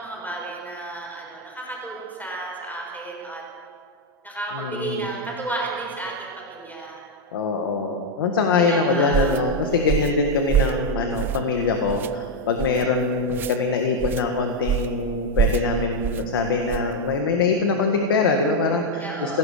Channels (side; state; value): both; normal; correlation 0.01